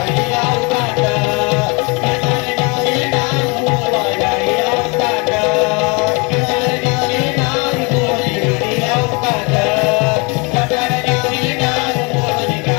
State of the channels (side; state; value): right; quieter; 30.1 dB